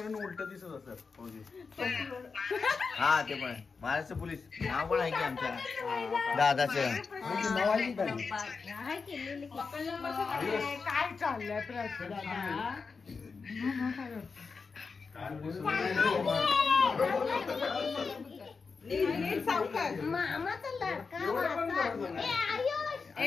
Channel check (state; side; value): quieter; right; 4.9 dB